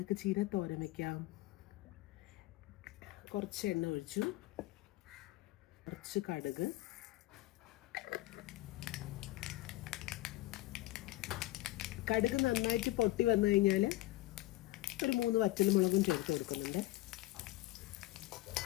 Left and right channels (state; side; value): quieter; right; 17.7 dB